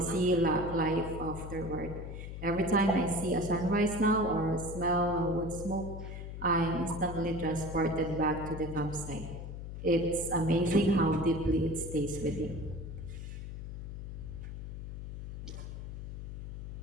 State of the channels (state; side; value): noise; left; hum, 8 dB below the sound